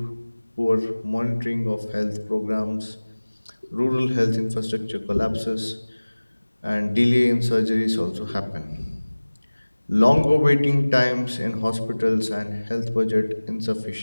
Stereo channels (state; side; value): inverted; both; correlation -1.00